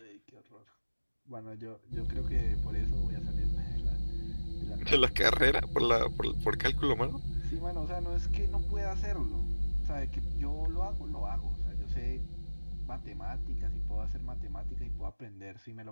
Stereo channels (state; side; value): inverted; both; correlation -1.00